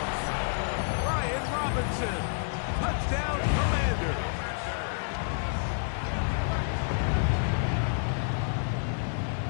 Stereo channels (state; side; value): silent; right; digital silence